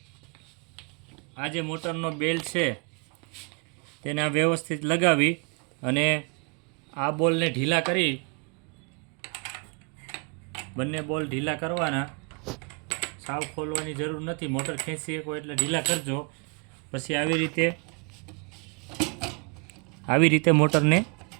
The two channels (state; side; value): quieter; left; 35.1 dB